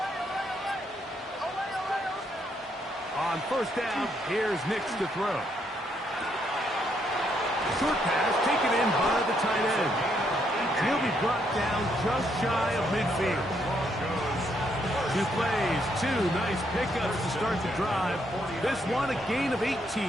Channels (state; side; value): normal; both; correlation 0.74